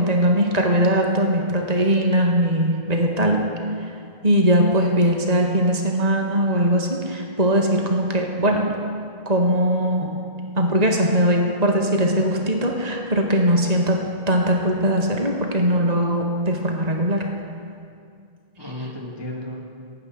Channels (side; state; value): left; late; 1.9 ms